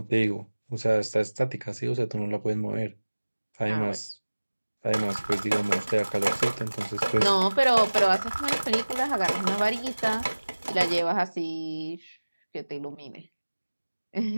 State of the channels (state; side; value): inverted; both; correlation -1.00